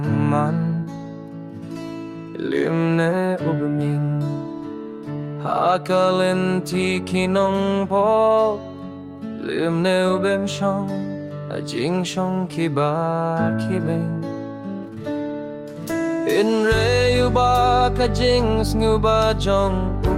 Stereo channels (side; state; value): both; identical; correlation 1.00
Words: limne ubeming hakalenti kinong po limne ubem shong ajing shong kibar kibeng inre uba kajing snuba jong